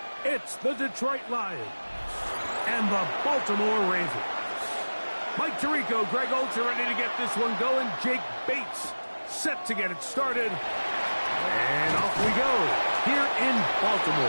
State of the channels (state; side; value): inverted; both; correlation -1.00